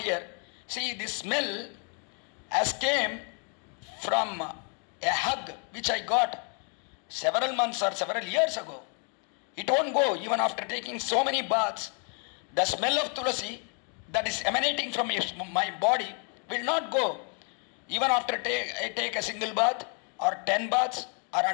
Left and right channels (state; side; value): quieter; right; 39.6 dB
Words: here. See, this smell has came from a hug which I got several months or several years ago. It won't go even after taking so many baths. The smell of Tulasi that is emanating from my body will not go. Even after I take a single bath or 10 baths or